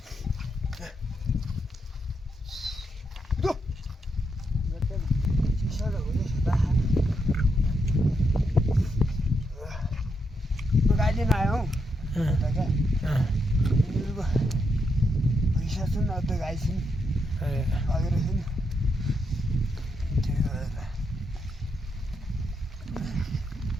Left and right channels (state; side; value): normal; both; correlation 0.81